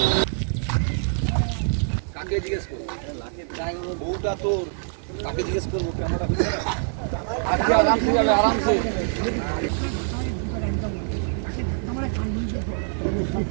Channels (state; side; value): silent; left; 62 dB below the other